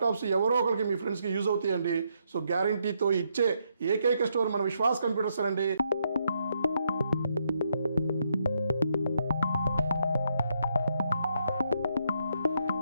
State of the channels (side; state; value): both; inverted; correlation -0.76